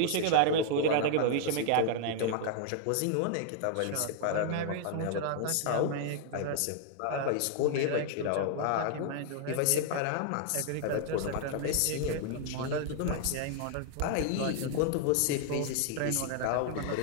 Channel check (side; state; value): both; different; correlation -0.01